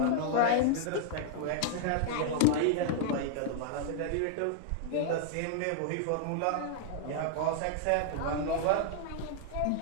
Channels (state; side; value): different; both; correlation -0.01